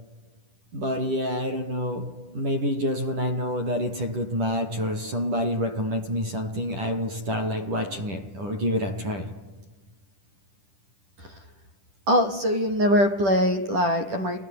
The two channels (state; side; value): late; left; 10 ms